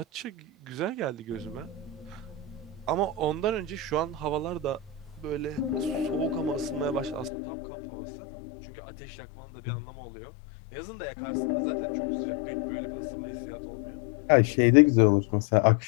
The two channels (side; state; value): right; drops out; at 7.3 s